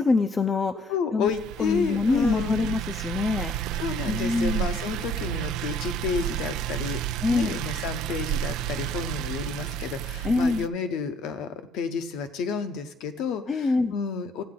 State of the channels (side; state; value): both; normal; correlation 0.60